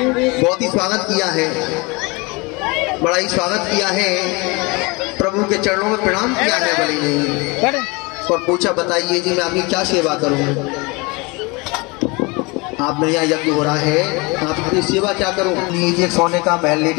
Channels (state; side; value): quieter; right; 26.8 dB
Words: बहुत ही स्वागत किया है, बड़ा ही स्वागत किया है, प्रभु के चरणों में प्रणाम किया है बलि ने और पूछा बताइए जी मैं आपकी क्या सेवा करूं। आप मेरे यहाँ यज्ञ हो रहा है, आपकी सेवा क्या करूं। लीजिए सोने का महल ले